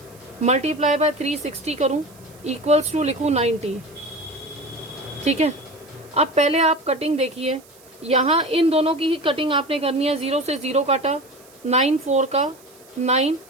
मल्टीप्लाई बाय 360 करूँ, इक्वल्स टू लिखूँ 90। ठीक है, अब पहले आप कटिंग देखिए, यहाँ इन दोनों की ही कटिंग आपने करनी है। 0 से 0 काटा, 9 4 का, 9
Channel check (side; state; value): right; noise; hiss, 26 dB below the sound